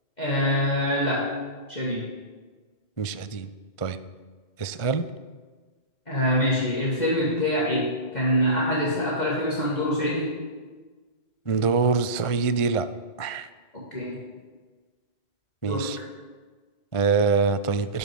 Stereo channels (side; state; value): right; late; 1.5 ms